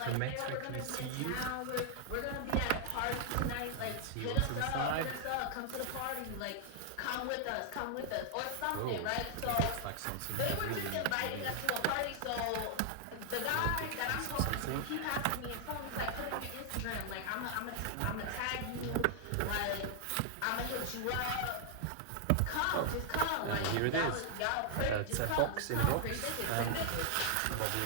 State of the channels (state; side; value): different; both; correlation 0.00